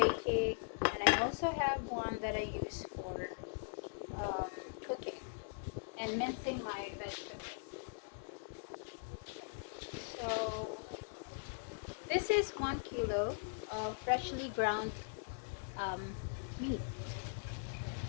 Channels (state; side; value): silent; right; 51 dB below the other